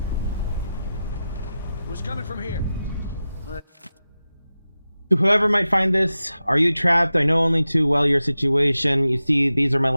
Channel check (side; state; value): both; inverted; correlation -0.93